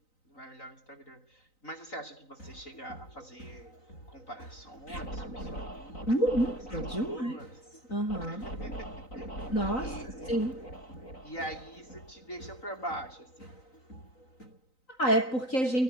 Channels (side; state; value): right; late; 3.9 ms